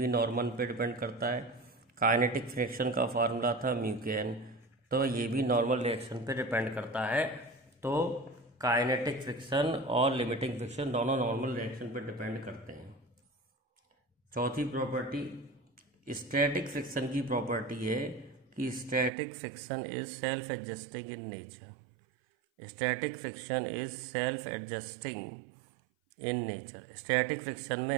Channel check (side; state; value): left; drops out; at 19.1 s